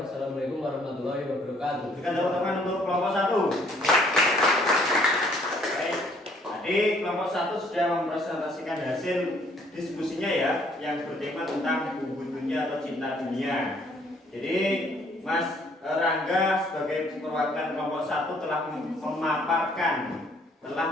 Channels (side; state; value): both; normal; correlation 0.63